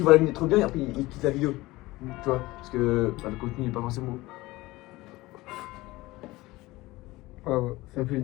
voit la vidéo trop bien et après il quitte la vidéo. Tu vois, parce que bah, le contenu il est pas forcément. Ah ouais. Ça fait une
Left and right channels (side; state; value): right; quieter; 19.6 dB